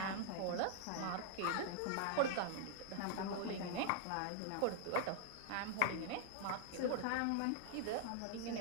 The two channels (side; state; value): both; different; correlation 0.00